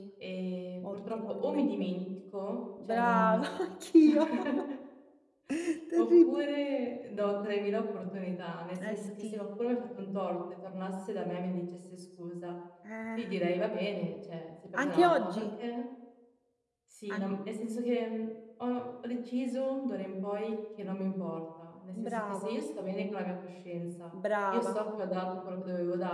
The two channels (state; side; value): identical; both; correlation 1.00